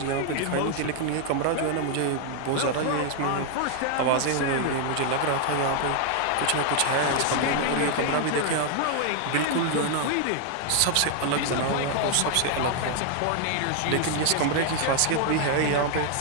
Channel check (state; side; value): different; both; correlation 0.00